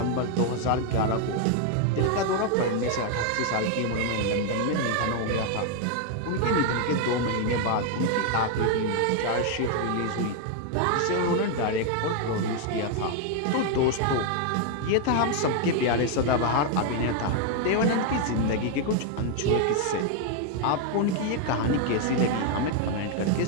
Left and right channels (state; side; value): different; both; correlation 0.01